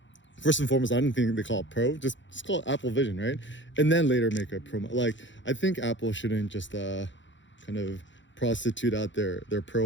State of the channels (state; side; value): late; right; 0.54 ms